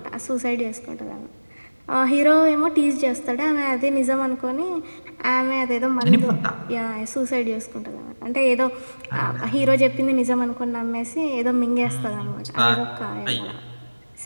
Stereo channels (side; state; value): both; inverted; correlation -1.00